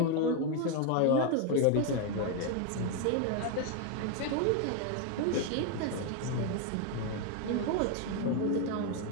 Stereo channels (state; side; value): different; both; correlation 0.01